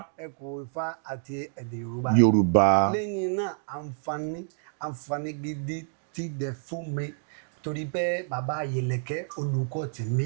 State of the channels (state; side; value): silent; left; digital silence